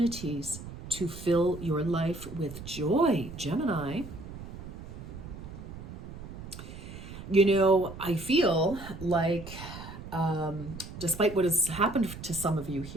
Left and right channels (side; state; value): right; noise; rumble, 12 dB below the sound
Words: to fill your life with joy, Gemini. I feel like, despite what has happened to some of you